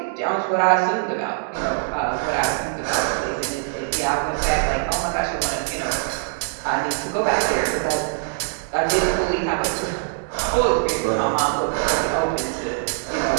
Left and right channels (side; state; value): left; silent; digital silence